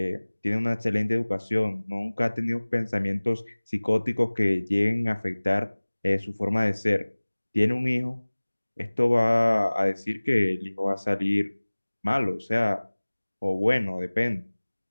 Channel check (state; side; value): inverted; both; correlation -1.00